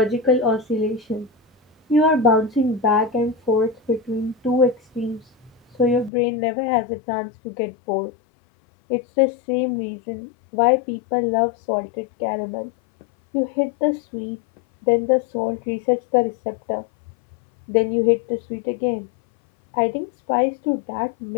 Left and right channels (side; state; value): right; drops out; at 6.1 s